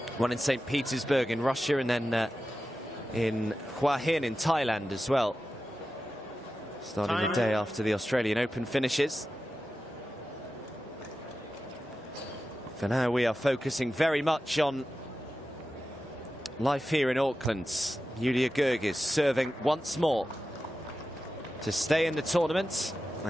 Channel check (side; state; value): both; normal; correlation 0.93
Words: One in St. Petersburg in Russia, and then in Hua Hin in Thailand as well, starting the day after the Australian Open finishes. For now, we are focusing very much on life here in Auckland. Julia Goerges serving once more to stay in the tournament